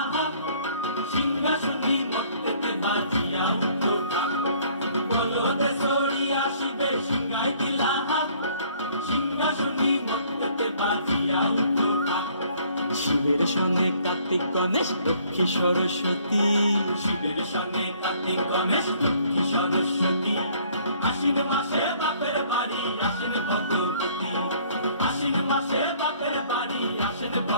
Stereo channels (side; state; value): both; inverted; correlation -0.59